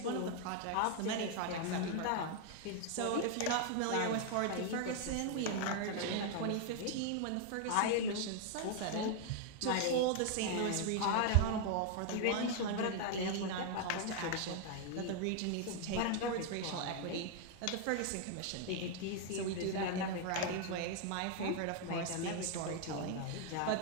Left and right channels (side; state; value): both; different; correlation 0.00